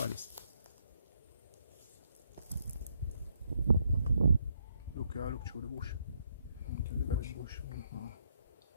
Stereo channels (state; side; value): inverted; both; correlation -0.74